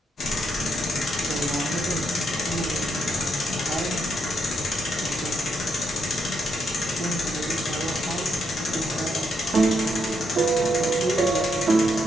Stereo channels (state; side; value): normal; both; correlation 0.78